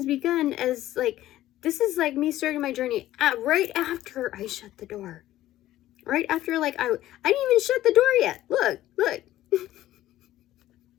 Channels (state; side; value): quieter; right; 14.4 dB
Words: begun as, like, this is like me starting my journey right after I shut the door. Right after, like, I didn't even shut the door yet. Look.